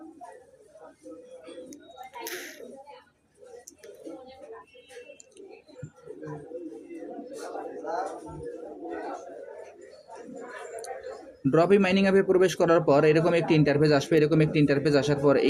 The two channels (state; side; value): identical; both; correlation 1.00